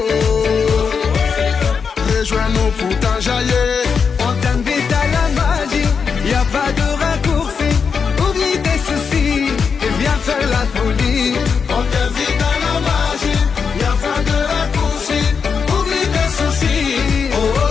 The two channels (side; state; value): right; quieter; 5.9 dB